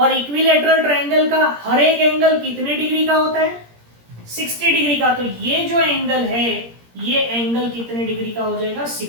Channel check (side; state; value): left; late; 17 ms